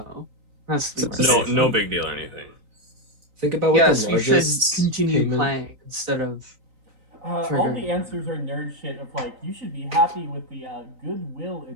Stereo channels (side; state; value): left; late; 3.9 ms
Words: that's no big deal or anything. Think about what the largest we should continue payment... playing instead of. All the answers are nerd shit of like, you should be happy with the goodwill